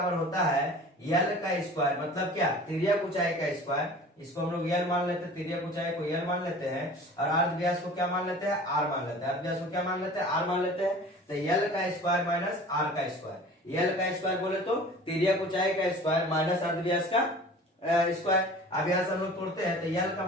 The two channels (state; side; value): normal; both; correlation 0.43